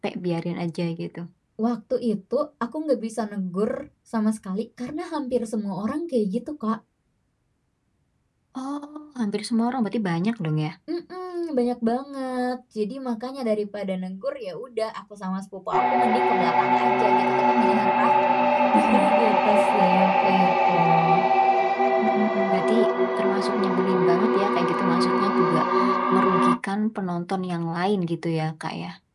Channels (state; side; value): identical; both; correlation 1.00